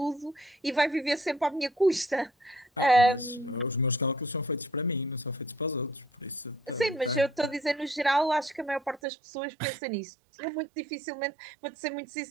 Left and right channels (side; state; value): left; drops out; at 9.0 s